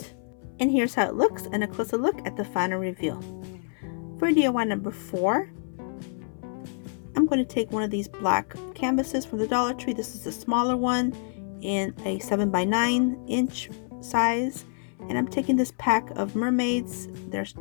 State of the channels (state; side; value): silent; right; 60 dB below the other